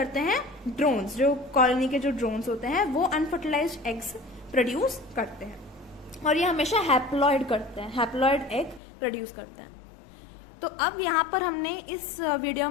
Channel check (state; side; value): drops out; right; at 8.8 s